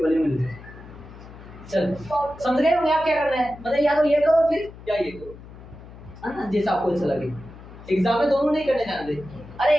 मिल गए। चलो समझ गए होंगे आप क्या करना है, मतलब या तो ये करो फिर या ये करो, है ना, जैसा आपको अच्छा लगे। एग्जाम में दोनों नहीं करने जाते, अरे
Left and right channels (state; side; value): noise; left; hum, 17 dB below the sound